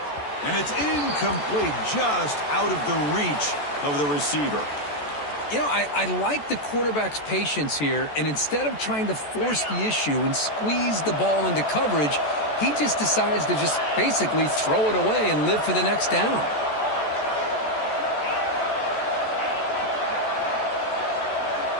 And it's incomplete, just out of the reach of the receiver. You know, I like the quarterback's patience here, and instead of trying to force the issue and squeeze the ball into coverage, he just decides to just basically throw it away and live for the next down.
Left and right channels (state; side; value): late; right; 14 ms